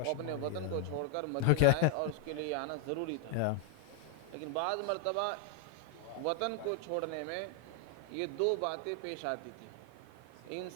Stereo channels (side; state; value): both; different; correlation 0.00